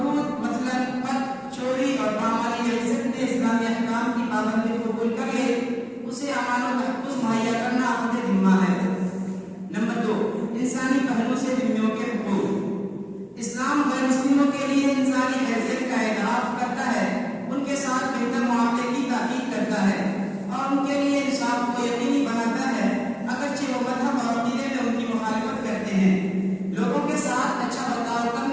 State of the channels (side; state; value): both; identical; correlation 1.00